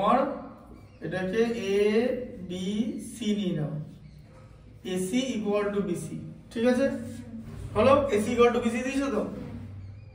এটাকে এ বি সি নিয়ে নাও, এসি ইকুয়াল টু বিসি। ঠিক আছে, হলো? এসি ইকুয়াল টু বিসি দিয়েছো তো?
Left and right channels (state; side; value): identical; both; correlation 1.00